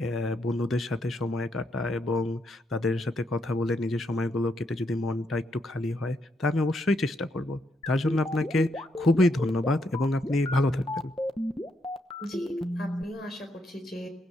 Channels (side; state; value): both; normal; correlation 0.77